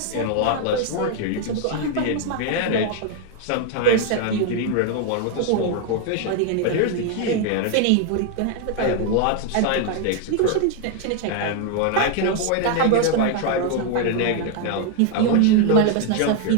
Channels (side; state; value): both; different; correlation 0.00